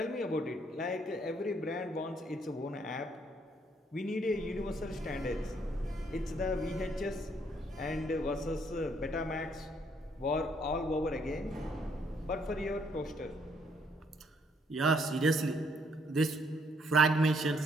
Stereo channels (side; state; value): both; normal; correlation 0.69